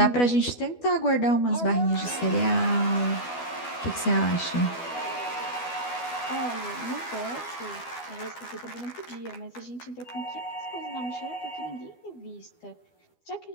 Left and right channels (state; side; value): late; right; 12 ms